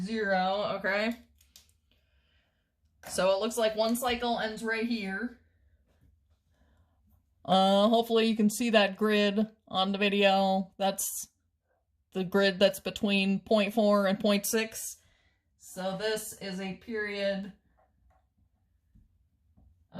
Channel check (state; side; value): identical; both; correlation 1.00